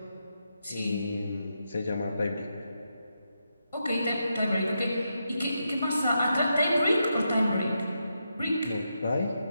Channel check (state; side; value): inverted; both; correlation -0.84